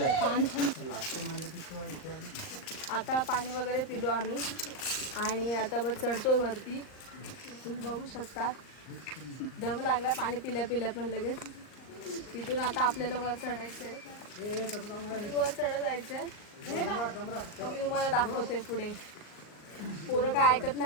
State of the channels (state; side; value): late; right; 39 ms